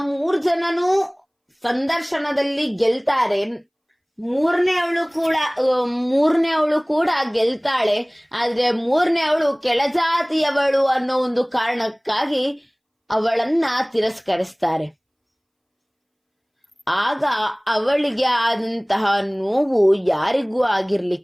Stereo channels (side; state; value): both; identical; correlation 1.00